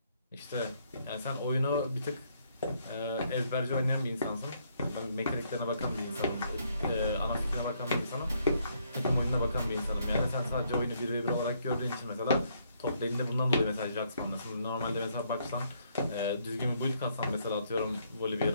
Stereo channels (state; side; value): inverted; both; correlation -0.71